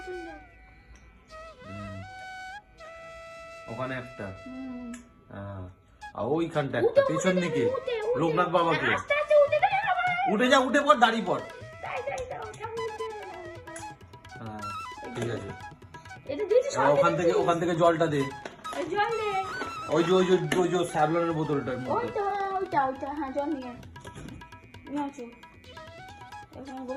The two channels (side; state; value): both; identical; correlation 1.00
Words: দাও। ওখানে একটা, আর ওইখানটা একটা, পেছন দিকে লোকনাথ বাবাকে। আস্তে আস্তে উঠে দাও আবার। উঠে যা, উঠে পড়, দাঁড়িয়ে পড়। তাই দাও, ঠাকুর উঠে দাও। হ্যাঁ, ঠিক আছে। এটা দিয়েছি এবার ওখান থেকে জলটা দে। জল দে। ওই যে স্যাভলনের বোতলটার মধ্যে। ওইটা হ্যাঁ, জল নিয়ে আসো। এখানে